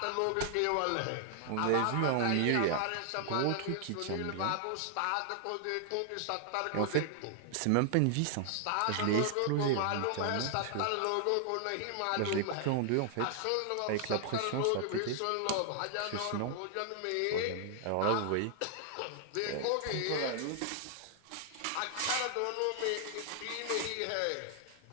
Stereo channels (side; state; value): both; different; correlation 0.00